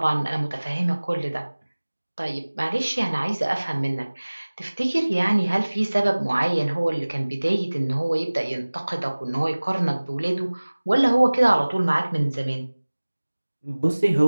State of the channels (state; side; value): inverted; both; correlation -1.00